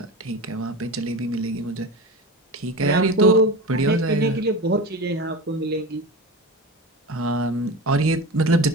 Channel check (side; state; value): both; normal; correlation 0.27